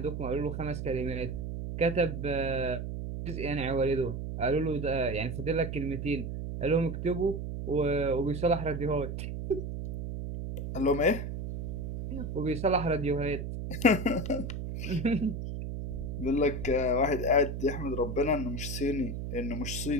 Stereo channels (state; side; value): noise; right; hum, 5 dB below the sound